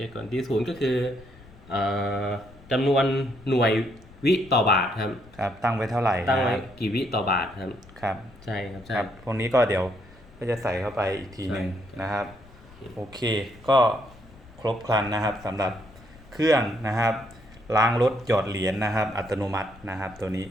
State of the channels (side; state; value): left; noise; rumble, 22 dB below the sound